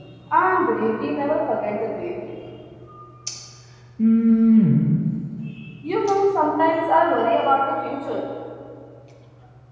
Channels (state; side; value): identical; both; correlation 1.00